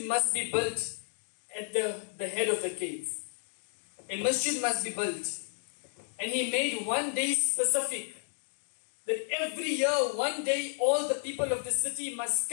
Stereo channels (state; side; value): silent; right; digital silence